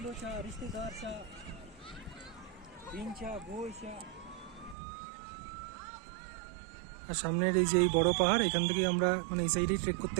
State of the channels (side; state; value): left; drops out; at 4.8 s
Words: আর সামনের এই যে এই বড় পাহাড়, এখান থেকে আমরা মানে এই সাইডেই ট্রেক করতে